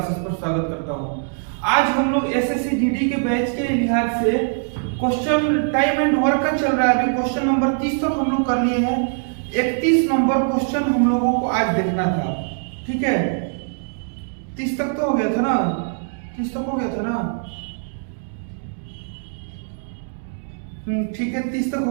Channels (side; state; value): left; silent; digital silence